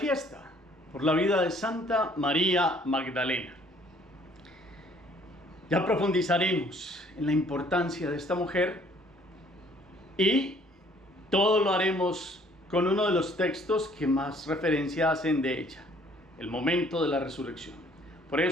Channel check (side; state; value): both; normal; correlation 0.59